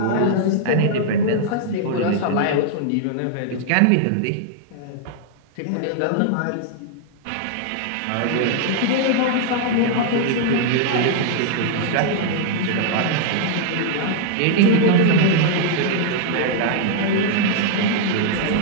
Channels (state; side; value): different; both; correlation -0.01